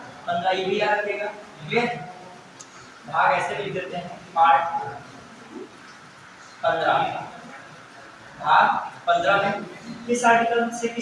15। ये भी याद रखिएगा। क्लियर? भाग ऐसे लिख देते हैं, पार्ट 15 भाग 15 में किस आर्टिकल से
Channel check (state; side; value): identical; both; correlation 1.00